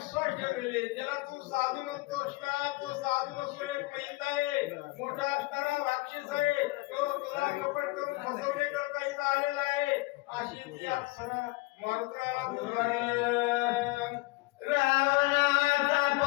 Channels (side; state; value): right; quieter; 22.9 dB